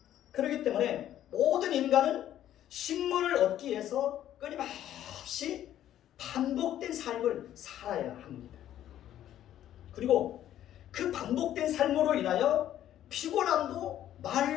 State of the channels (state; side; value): quieter; right; 11.8 dB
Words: 그렇기 때문에 모든 인간은 식물을 얻기 위해서 끊임없이 반복된 삶을 살아야 합니다. 그리고 그 반복된 삶으로 인하여 피곤함도